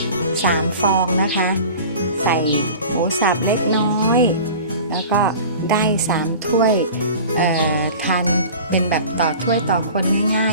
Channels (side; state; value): both; inverted; correlation -0.39